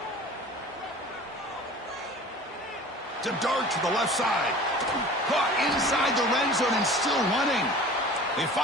To dart to the left side. Caught inside the red zone and still running. They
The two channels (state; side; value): normal; both; correlation 0.42